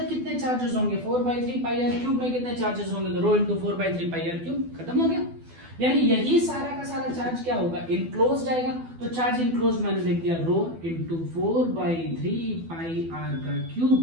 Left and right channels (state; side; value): late; left; 12 ms